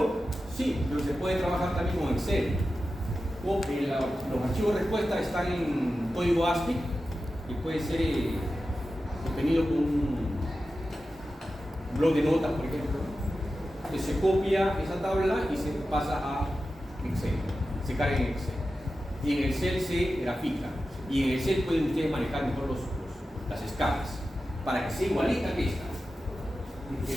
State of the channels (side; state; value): both; normal; correlation 0.93